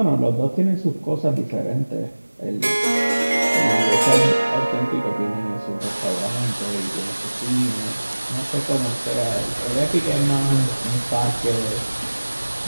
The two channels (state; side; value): inverted; both; correlation -1.00